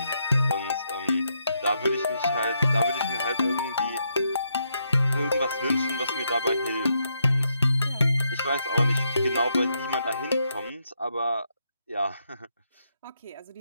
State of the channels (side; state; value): both; inverted; correlation -0.79